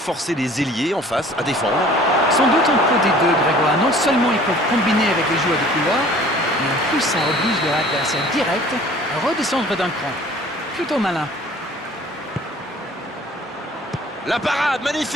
les ailiers en face à défendre? Sans doute un peu des deux, Grégoire. Non seulement ils peuvent combiner avec les joueurs de couloir, mais en plus ça oblige leur adversaire direct à redescendre d'un cran. Plutôt malin. La parade,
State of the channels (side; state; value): both; normal; correlation 0.50